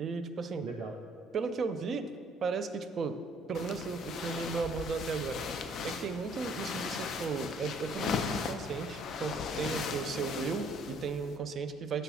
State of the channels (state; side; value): normal; both; correlation 0.61